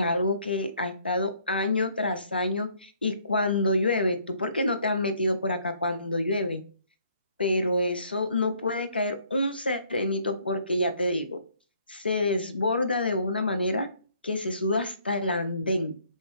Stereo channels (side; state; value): both; inverted; correlation -0.64